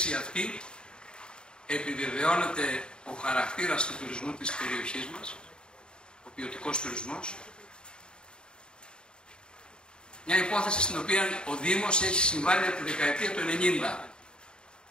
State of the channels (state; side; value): late; right; 0.050 ms